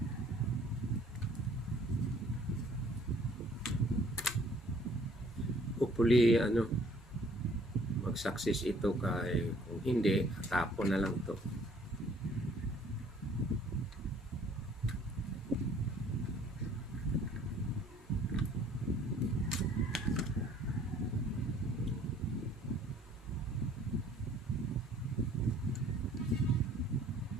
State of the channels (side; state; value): both; normal; correlation 0.57